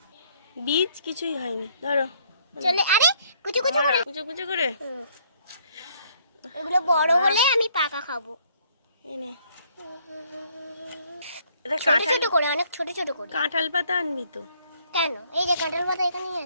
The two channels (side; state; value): both; inverted; correlation -0.65